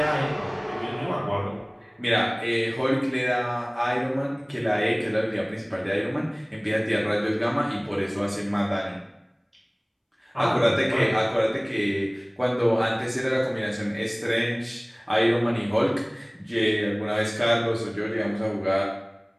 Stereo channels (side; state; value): both; identical; correlation 1.00